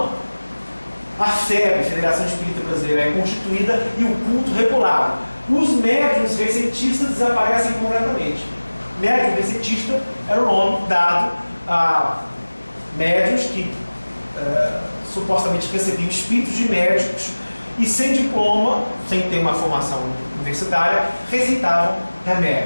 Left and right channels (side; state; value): both; inverted; correlation -1.00